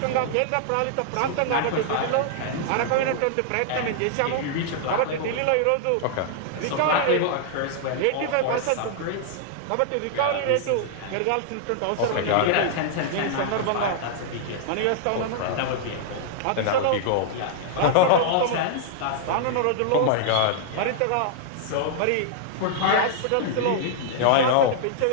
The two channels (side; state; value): both; different; correlation -0.01